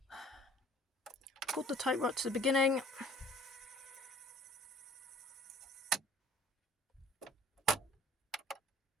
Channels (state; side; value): normal; both; correlation 0.52